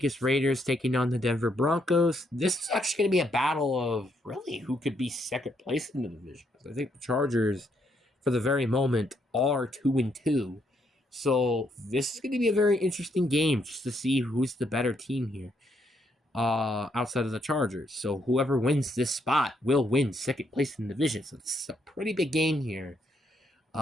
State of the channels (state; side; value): normal; both; correlation 0.74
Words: Raiders taking on the Denver Broncos. This is actually going to be a battle of really who could be second place in the division. I think the Chargers, for the very moment, are 2-2. So this is going to be a very interesting game just to see who's the better team here outside of the Chargers. So whoever wins this spot will win second place in the division. So this is a pretty big game here.